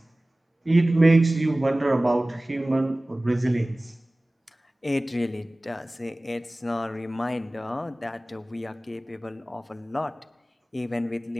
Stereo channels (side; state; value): both; normal; correlation 0.98